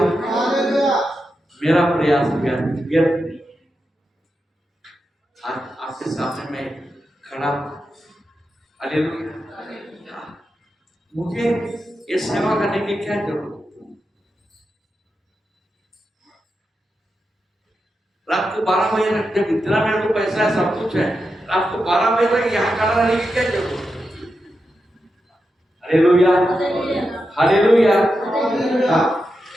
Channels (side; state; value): both; normal; correlation 0.88